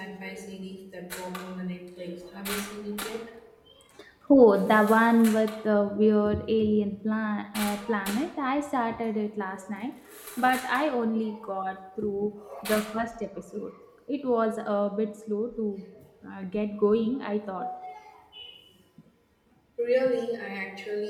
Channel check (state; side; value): identical; both; correlation 1.00